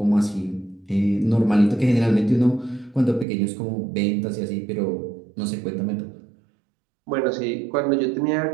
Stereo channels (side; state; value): left; drops out; at 3.2 s